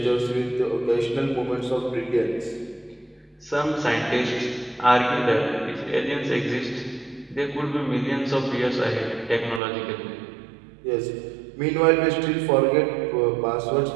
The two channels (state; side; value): drops out; left; at 9.6 s